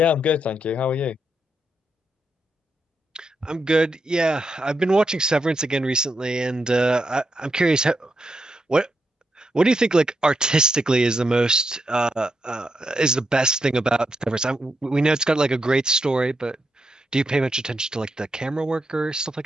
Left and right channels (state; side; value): normal; both; correlation 0.83